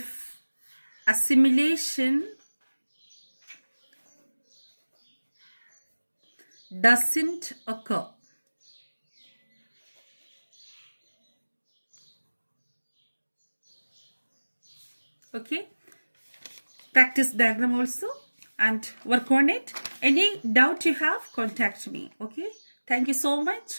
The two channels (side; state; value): both; inverted; correlation -1.00